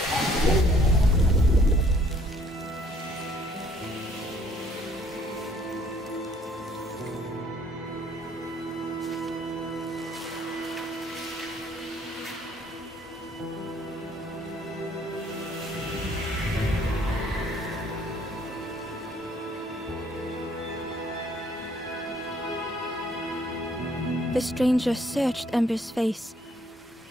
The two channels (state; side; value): normal; both; correlation 0.62